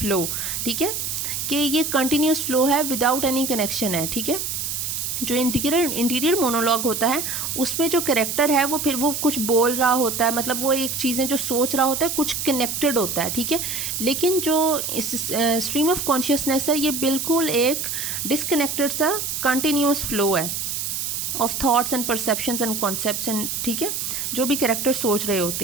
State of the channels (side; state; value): right; noise; hiss, 3 dB below the sound